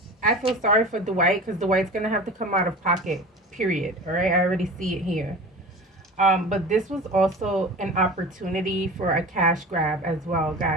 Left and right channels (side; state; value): both; normal; correlation 0.35